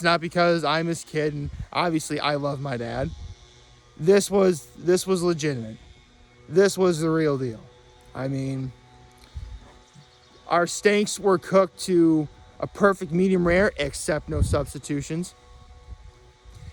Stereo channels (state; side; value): identical; both; correlation 1.00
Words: not because I'm his kid, and obviously I love my dad. This was legitimate. This was the real deal. I mean, our steaks were cooked to a perfect medium rare, except no substitutions.